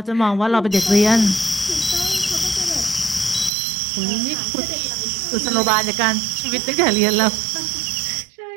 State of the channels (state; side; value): drops out; left; at 3.5 s